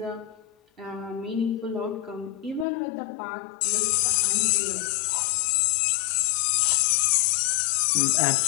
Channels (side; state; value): right; drops out; at 2.7 s